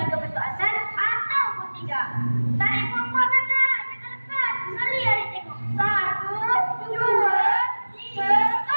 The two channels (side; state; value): both; inverted; correlation -1.00